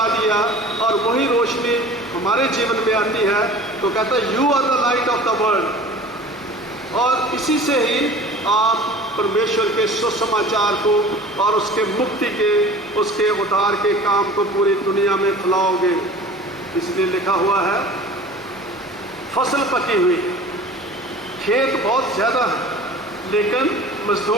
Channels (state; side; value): normal; both; correlation 0.43